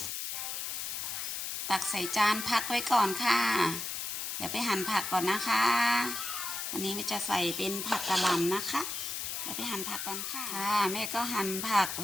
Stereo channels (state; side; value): noise; left; hiss, 4 dB below the sound